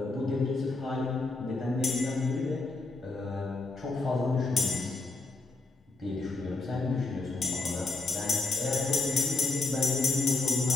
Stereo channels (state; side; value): quieter; right; 3.5 dB